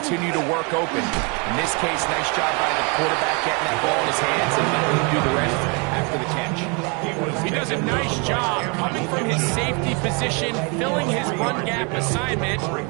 to work open. In this case, nice job by the quarterback getting that ball in his hands and letting him do the rest after the catch. He does a nice job coming from his safety position, filling his run gap assignment.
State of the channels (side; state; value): left; quieter; 32.8 dB